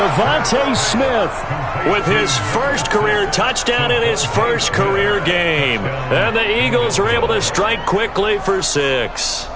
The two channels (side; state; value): both; identical; correlation 1.00